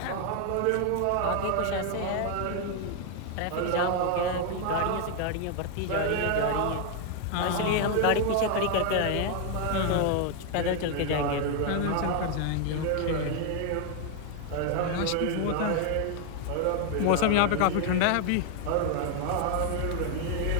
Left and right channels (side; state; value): both; different; correlation 0.00